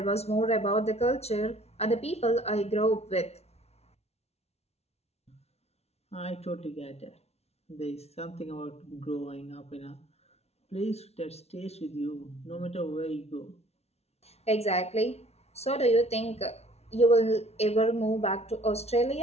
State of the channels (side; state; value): right; late; 0.31 ms